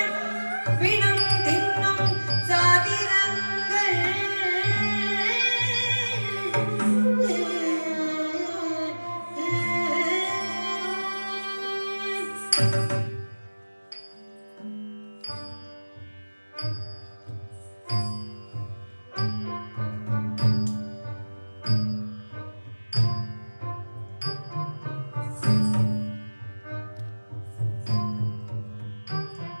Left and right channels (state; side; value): inverted; both; correlation -1.00